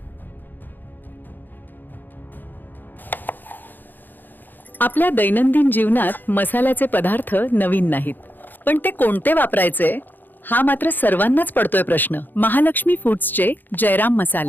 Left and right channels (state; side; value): late; right; 0.089 ms